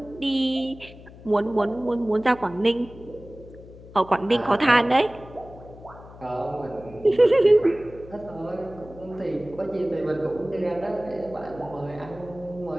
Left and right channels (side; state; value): left; noise; hum, 19 dB below the sound